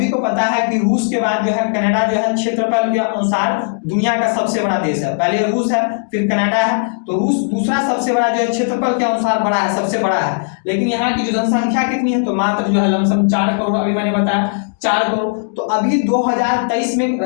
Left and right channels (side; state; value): right; silent; digital silence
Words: को पता है कि रूस के बाद जो है कनाडा जो है क्षेत्रफल के अनुसार दुनिया का सबसे बड़ा देश है। पहले रूस है, फिर कनाडा है, तो रूस दूसरा सबसे बड़ा जो है क्षेत्रफल के अनुसार बड़ा है, सबसे बड़ा है। लेकिन यहाँ की जो जनसंख्या कितनी है, तो मात्र जो है लमसम 4 करोड़, अभी मैंने बताया 4 करोड़। तो अभी 2023 में